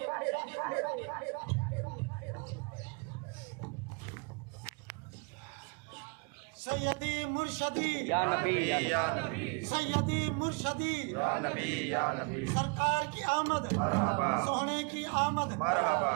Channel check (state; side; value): quieter; left; 33.6 dB